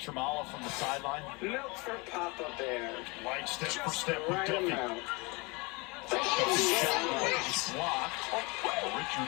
from the sideline. Milk for Papa Bear. Light step for Just step the with right Duffy. amount. Duffy shot is blocked. Richard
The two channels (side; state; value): right; quieter; 27.3 dB